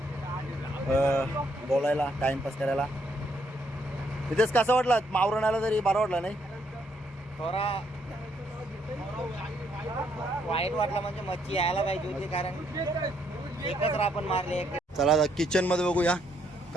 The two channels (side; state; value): both; normal; correlation 0.72